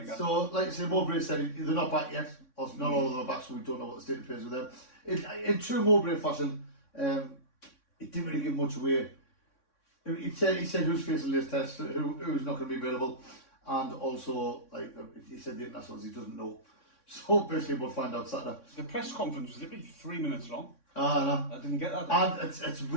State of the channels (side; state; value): right; late; 3.6 ms